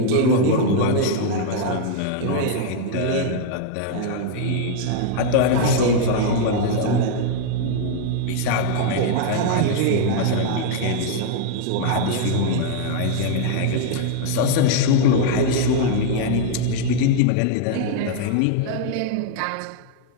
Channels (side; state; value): both; different; correlation -0.01